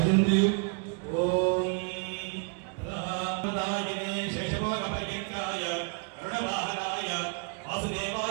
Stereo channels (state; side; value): quieter; left; 37.5 dB